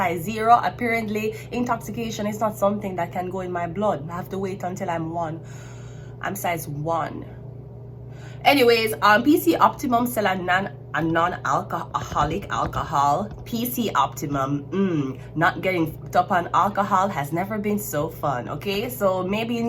0, apparently intoxication is not something that can go in my blood. I have to wait until I'm 1. I'm size 1. Anyways, PC Optimum sell a non-alcoholic alcohol. PC Optimum, not getting hooked up on alcohol has never been so fun. Okay, so maybe you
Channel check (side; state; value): both; identical; correlation 1.00